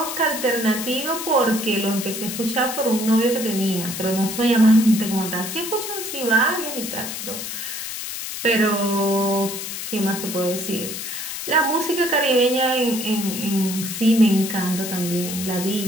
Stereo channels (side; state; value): left; noise; hiss, 6 dB below the sound